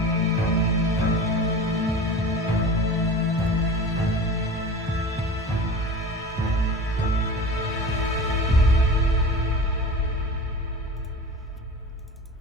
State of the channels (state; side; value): normal; both; correlation 0.34